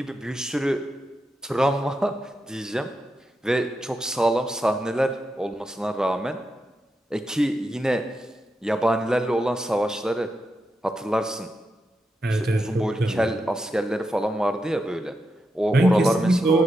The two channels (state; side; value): normal; both; correlation 0.86